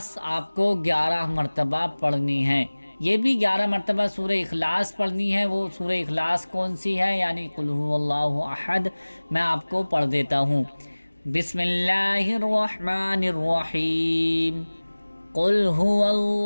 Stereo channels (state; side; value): inverted; both; correlation -1.00